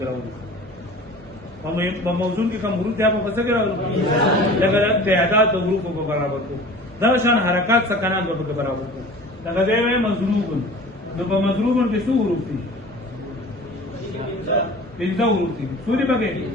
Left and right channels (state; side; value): normal; both; correlation 0.41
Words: په موضوع کې کوم حروف دي هغه په څه کراوو لکه تعداد د حروف په برابر کو دا شان حرکات سکنات په برابر کو لکه دی مضروب نو په مضروب کې څو حروف دي پنځه حروف دي سوري بګه